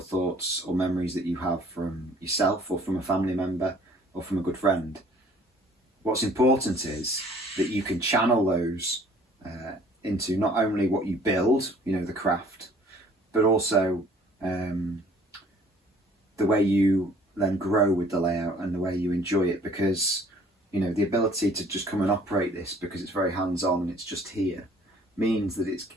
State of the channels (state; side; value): normal; both; correlation 0.56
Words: thoughts or memories that you have from yourself or from a family member or from a good friend. What's important is that you can channel those into not only what you build, you know, the craft, but also the way you then grow with the layout and the way you enjoy it, because, you know, the ability to just come and operate this because it's very hands-on and it's just here means that